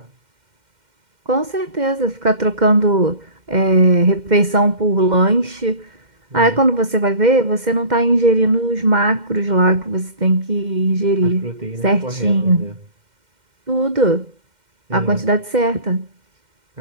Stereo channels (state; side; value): late; left; 2.1 ms